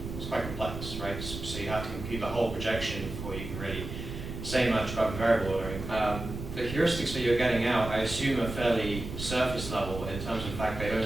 is quite complex, right? So you have to compute the whole projection before you can really say much about the variable ordering. The heuristics that you're getting out, I assume, are fairly surface level in terms of the fact they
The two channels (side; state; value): right; noise; rumble, 8 dB below the sound